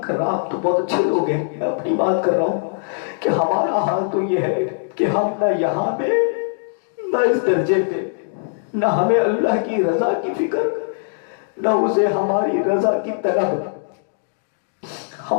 کر رہا، آپ تو بہت اچھے لوگ ہیں، میں اپنی بات کر رہا ہوں کہ ہمارا حال تو یہ ہے کہ ہم نہ یہاں پہ نہ اس درجے پہ، نہ ہمیں اللہ کی رضا کی فکر، نہ اسے ہماری رضا کی طلب.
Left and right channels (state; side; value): silent; right; digital silence